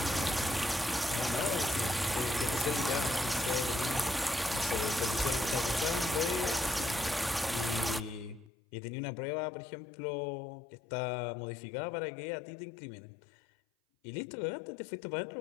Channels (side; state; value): right; drops out; at 8.5 s